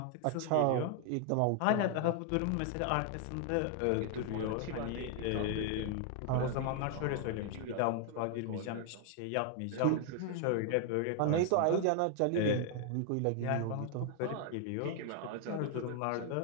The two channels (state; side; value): different; both; correlation 0.00